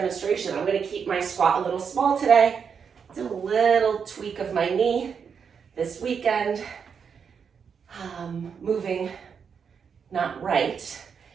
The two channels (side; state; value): left; quieter; 6.6 dB